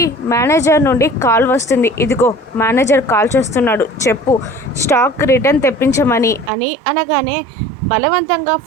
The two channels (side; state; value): left; drops out; at 6.5 s